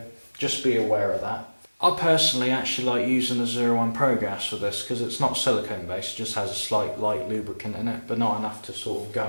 just be aware of that. I personally actually like using the 01 Pro gas for this, because it's not silicone based, it just has a slight light lubricant in it, but not enough to sort of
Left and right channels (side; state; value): both; inverted; correlation -1.00